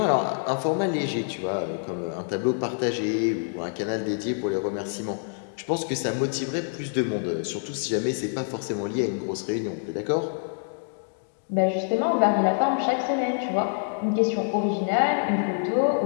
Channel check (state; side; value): silent; right; digital silence